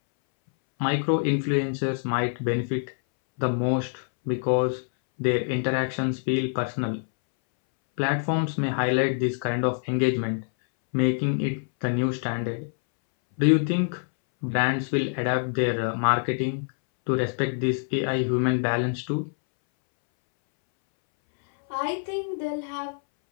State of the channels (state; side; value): silent; right; 61 dB below the other